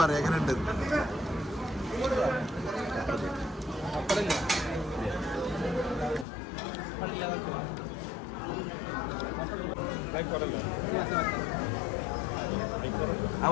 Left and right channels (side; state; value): right; drops out; at 6.2 s